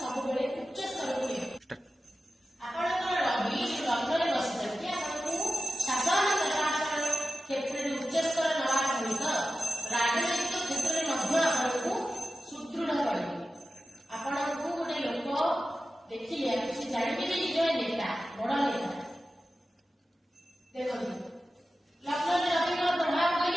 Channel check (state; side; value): normal; both; correlation 0.94